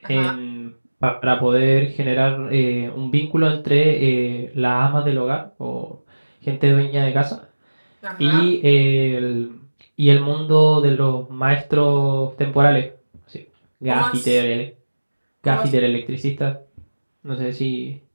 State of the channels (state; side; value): inverted; both; correlation -1.00